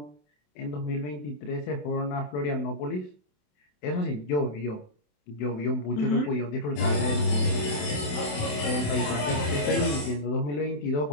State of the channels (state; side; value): late; right; 27 ms